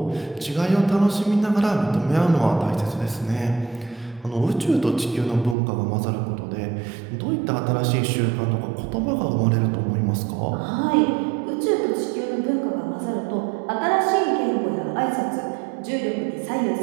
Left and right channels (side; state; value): left; drops out; at 5.6 s